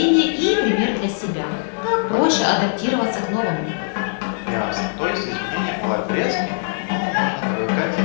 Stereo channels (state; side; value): silent; right; digital silence